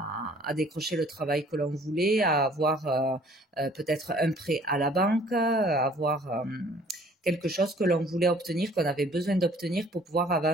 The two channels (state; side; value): normal; both; correlation 0.55